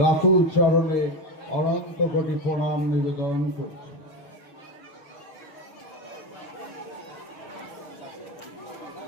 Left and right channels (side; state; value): right; late; 6.5 ms